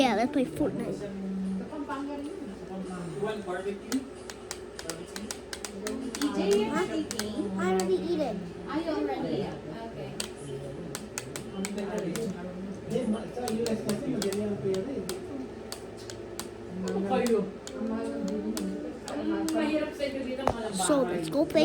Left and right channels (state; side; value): identical; both; correlation 1.00